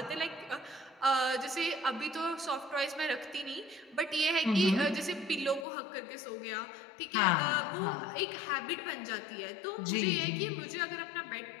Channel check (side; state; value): right; drops out; at 5.7 s